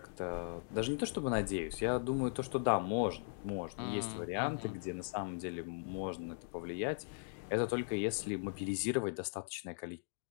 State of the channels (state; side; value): silent; right; digital silence